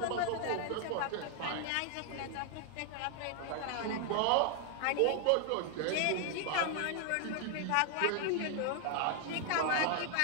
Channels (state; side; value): different; both; correlation 0.00